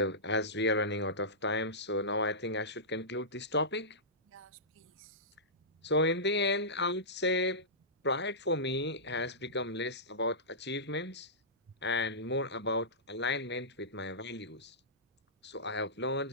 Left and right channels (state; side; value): normal; both; correlation -0.17